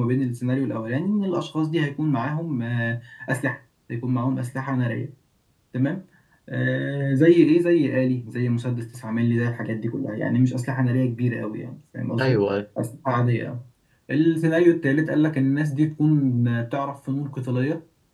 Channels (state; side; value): identical; both; correlation 1.00